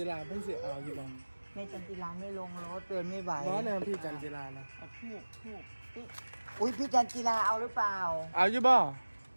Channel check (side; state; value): both; inverted; correlation -1.00